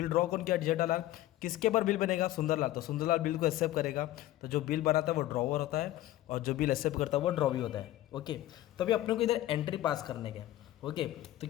ड्रॉ कौन किया? जेठालाल। किसके पर बिल बनेगा? सुंदरलाल। तो सुंदरलाल बिल को एक्सेप्ट करेगा। तो जो बिल बनाता है वो ड्रॉवर होता है, और जो बिल एक्सेप्ट करता है वो ड्रॉवी होता है। ओके, तो अभी अपने को इधर एंट्री पास करने का। ओके, तो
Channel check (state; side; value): quieter; right; 14.9 dB